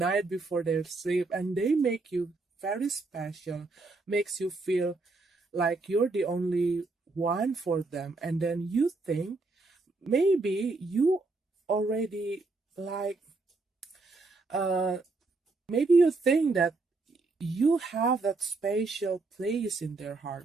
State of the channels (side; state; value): left; quieter; 3.5 dB